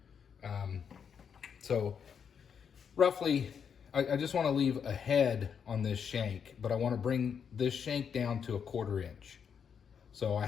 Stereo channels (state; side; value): quieter; right; 7.2 dB